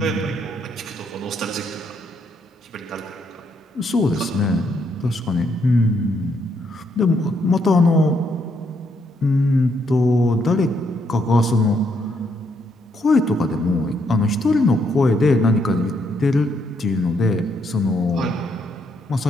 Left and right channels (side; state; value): both; normal; correlation 0.75